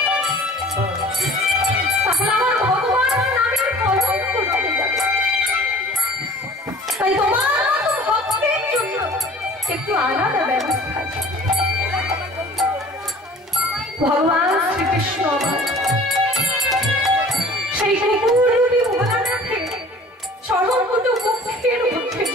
তাহলে আমার ভগবানের নামের কলঙ্ক রয়ে যাবে। তাই তোমার মতো ভক্তের জন্য একটু আলাদা ব্যবস্থা আছে। ভগবান শ্রীকৃষ্ণ সেই কুকুররূপী ভোলানাথে চরণ দুটো মুখের মধ্যে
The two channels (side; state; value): both; normal; correlation 0.47